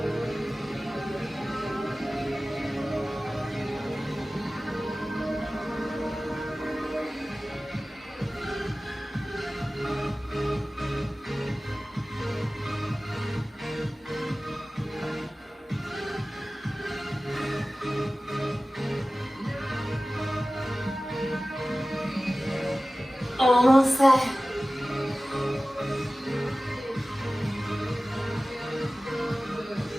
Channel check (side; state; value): both; normal; correlation 0.97